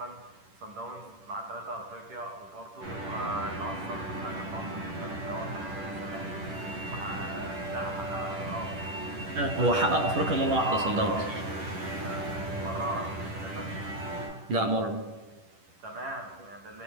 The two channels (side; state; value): left; late; 10 ms